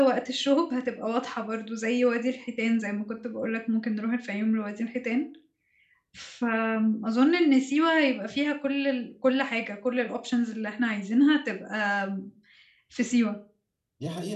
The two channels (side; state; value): both; identical; correlation 1.00